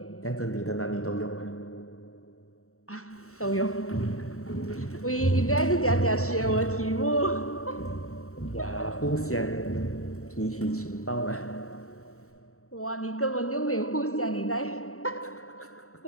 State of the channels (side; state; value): right; late; 0.64 ms